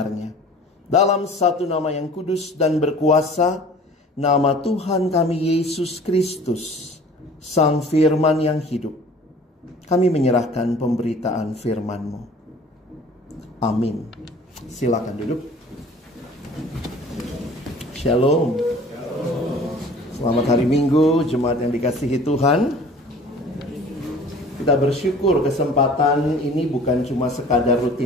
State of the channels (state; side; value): normal; both; correlation 0.47